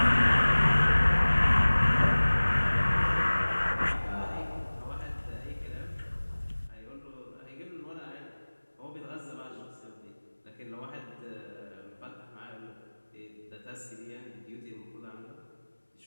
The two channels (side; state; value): both; inverted; correlation -1.00